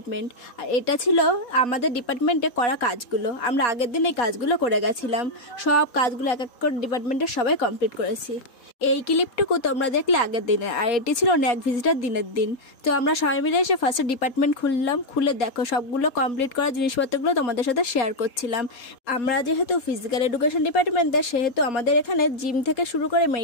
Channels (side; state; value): right; late; 3.8 ms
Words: আর এটা ছিল আমাদের ডিপার্টমেন্টে করা কাজগুলো। আমরা আগের দিন এই কাজগুলো করে গেছিলাম। সব কাজগুলো এক এক করে ডিপার্টমেন্টের সবাই কমপ্লিট করেছি। এই ক্লিপটুকু তোমরা দেখলে আগের দিনে, আর এটি ছিল ন্যাক ভিজিটার দিনের দিন। তো আমরা সবাই মিলে এসে ফার্স্টে ডিপার্টমেন্ট খুললাম। খুলে দেখো সবগুলো কমপ্লিট করা জিনিসপত্রগুলো তোমাদের সাথে শেয়ার করছিলাম। আমরা যেহেতু ফিজিক্যাল এডুকেশন ডিপার্টমেন্টের, সেহেতু আমাদের এখানে জিম থেকে শুরু করে